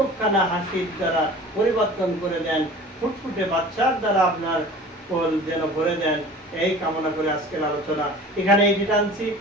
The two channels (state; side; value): normal; both; correlation 0.42